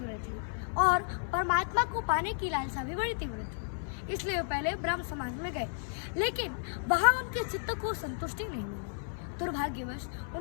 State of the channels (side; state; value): right; silent; 56 dB below the other